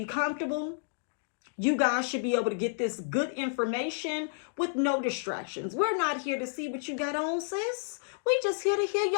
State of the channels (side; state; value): right; silent; digital silence